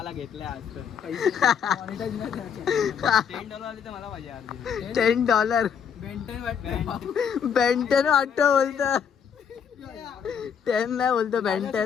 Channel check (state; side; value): quieter; right; 7.4 dB